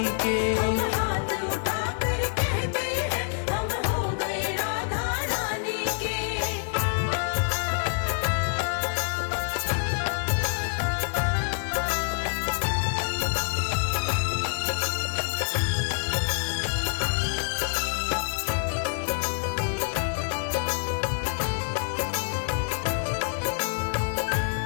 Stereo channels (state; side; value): silent; right; digital silence